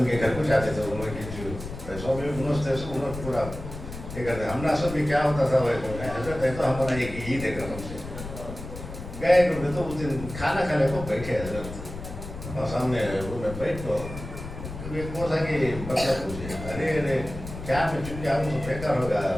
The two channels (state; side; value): noise; left; rumble, 10 dB below the sound